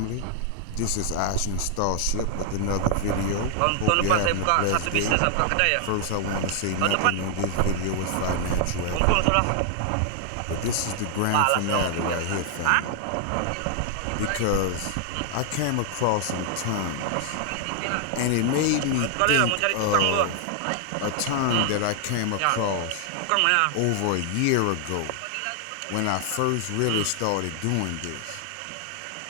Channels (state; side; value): different; both; correlation 0.00